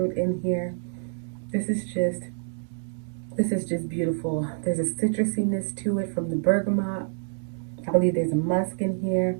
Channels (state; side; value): silent; left; digital silence